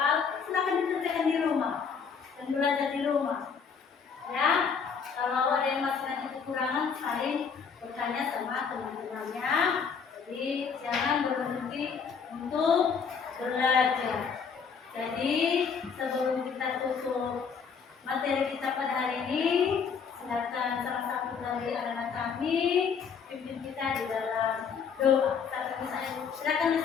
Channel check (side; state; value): right; quieter; 6.2 dB